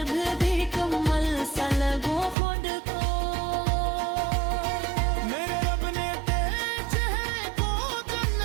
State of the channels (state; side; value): drops out; left; at 2.4 s